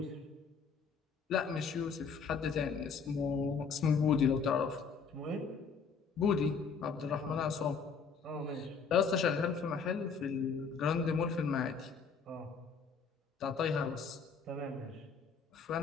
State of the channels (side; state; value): right; quieter; 5.6 dB